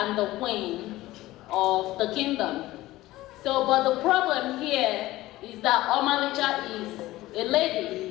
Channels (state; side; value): quieter; right; 17.2 dB